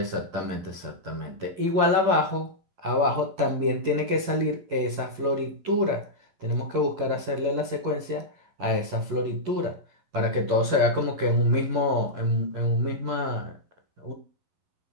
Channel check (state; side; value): late; left; 11 ms